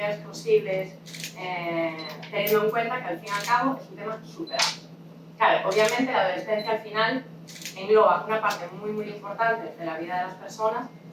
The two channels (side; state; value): both; identical; correlation 1.00